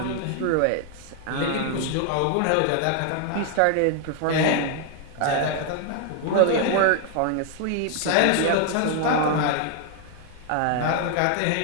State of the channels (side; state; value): both; different; correlation 0.00